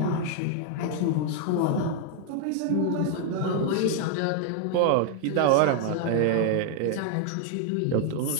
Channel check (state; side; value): different; both; correlation 0.00